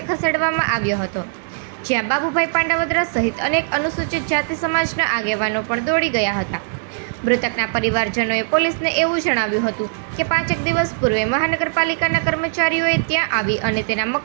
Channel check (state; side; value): silent; left; digital silence